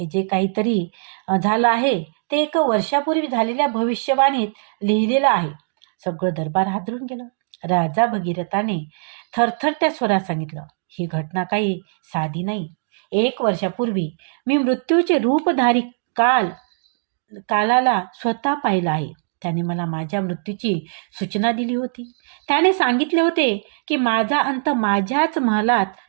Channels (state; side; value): silent; left; digital silence